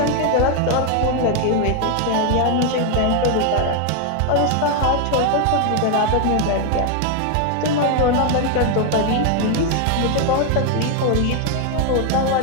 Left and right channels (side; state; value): both; different; correlation 0.01